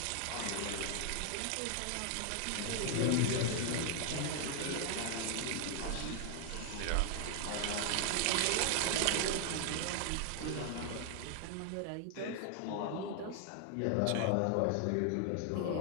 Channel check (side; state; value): both; different; correlation 0.00